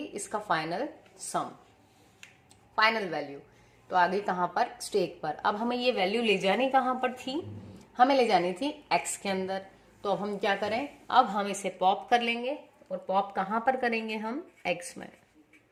इसका फाइनल सम, फाइनल वैल्यू। तो आ गई कहाँ पर, स्टैक पर। अब हमें ये वैल्यू ले जानी कहाँ पर थी, हमें ले जानी थी एक्स के अंदर। तो अब हम क्या करें, अब हम इसे पॉप कर लेंगे, और पॉप कहाँ पर करेंगे हम, एक्स में।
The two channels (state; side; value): identical; both; correlation 1.00